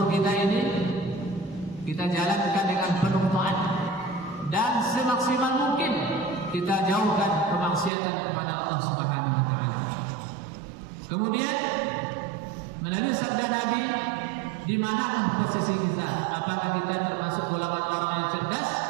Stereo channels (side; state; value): left; drops out; at 7.9 s